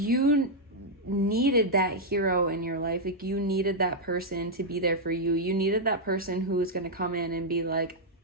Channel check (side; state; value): both; normal; correlation -0.03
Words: needed that hero in your life. Like you needed that person to be there for you. You needed that person who was going to come in and be like,